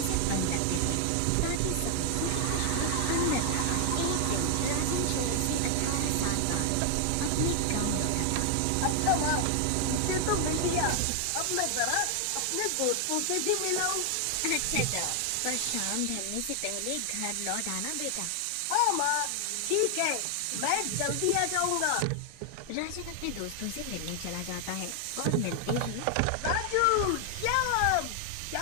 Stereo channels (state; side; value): different; both; correlation 0.00